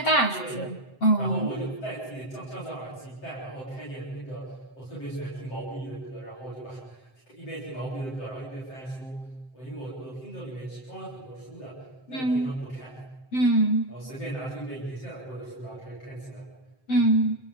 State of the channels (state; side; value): late; right; 7.7 ms